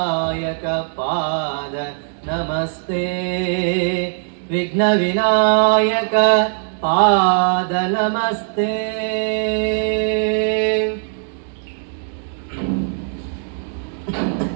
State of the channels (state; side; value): silent; left; 66 dB below the other